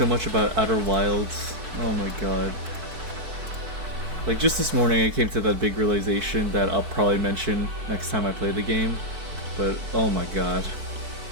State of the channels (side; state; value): left; late; 4.6 ms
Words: much about Outer Wilds. Oh my god. Like, just this morning I came to that big realization that I'll probably mention next time I play the game. But, oh my god.